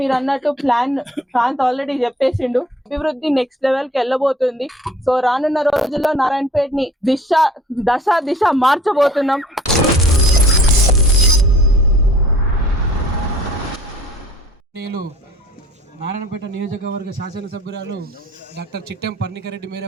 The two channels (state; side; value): normal; both; correlation 0.52